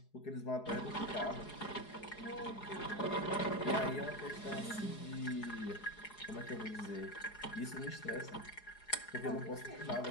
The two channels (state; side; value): late; right; 4.8 ms